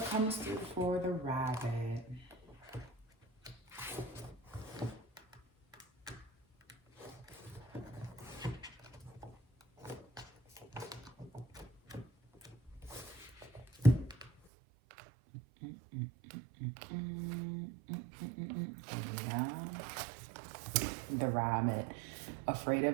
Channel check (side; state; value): left; drops out; at 14.3 s